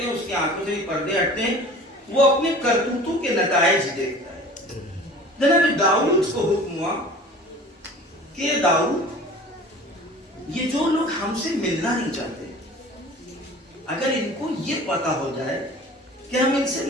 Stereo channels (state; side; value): normal; both; correlation 0.43